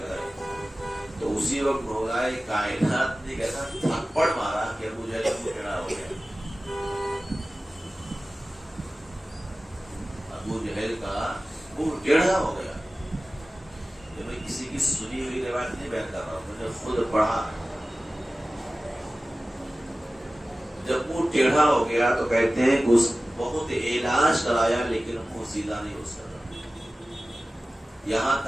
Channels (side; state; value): both; normal; correlation 0.96